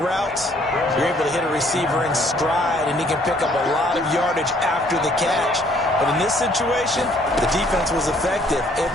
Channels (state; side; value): normal; both; correlation 0.62